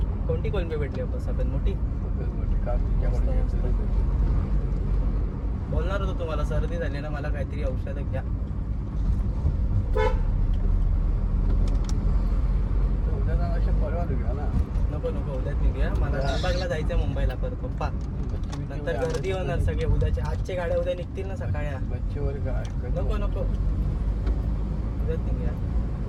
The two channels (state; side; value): identical; both; correlation 1.00